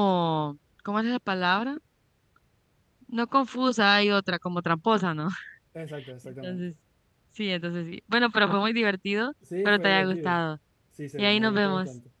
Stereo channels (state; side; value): identical; both; correlation 1.00